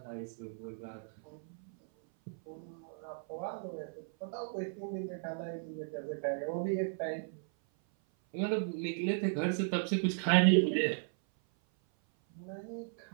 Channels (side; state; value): left; silent; 54 dB below the other